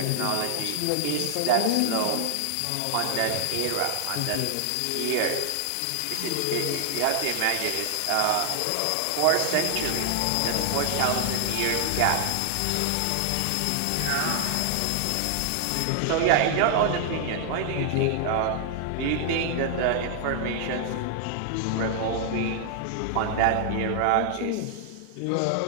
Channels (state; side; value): different; both; correlation 0.00